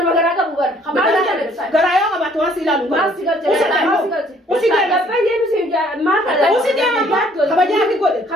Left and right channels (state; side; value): normal; both; correlation 0.60